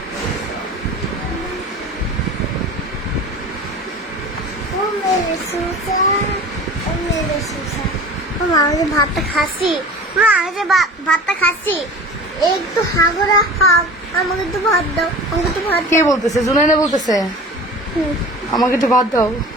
ভাতটা খাচ্ছি, ভাতটা খাচ্ছি, একটু হাগরা হাগ, আমাকে একটু ভাত দাও, আমাকে একটু ভাত। কে বলতেছে? জুনাইনা বলতেছে আমাকে একটু ভাত দাও।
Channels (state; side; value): normal; both; correlation 0.38